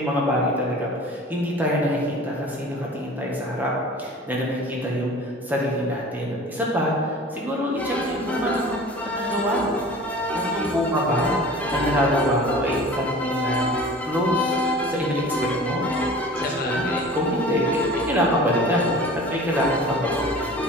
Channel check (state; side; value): normal; both; correlation 0.41